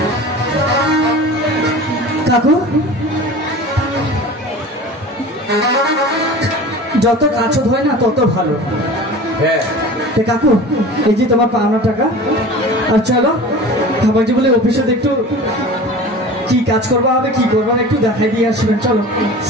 কাকু যত কাছে হয় না তত ভালো। হ্যাঁ কাকু এই যে তোমার পাওনা টাকা, আর চলো আমার যে বলে অফিসে একটু কি কাজ করবা হবে কি করবা একটু দেখাই দিয়ে আসবেন। চলো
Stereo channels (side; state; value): both; normal; correlation 0.38